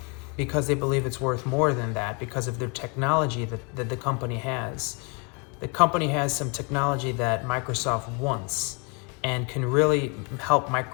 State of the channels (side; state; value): right; quieter; 33.4 dB